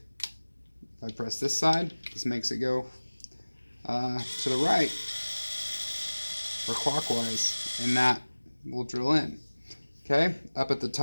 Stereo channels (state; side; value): inverted; both; correlation -1.00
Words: I press this side, this makes it go to the right or clockwise, and that will drill in. Okay, up at the